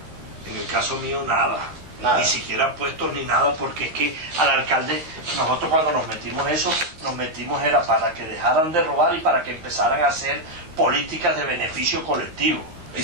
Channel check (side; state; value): left; late; 13 ms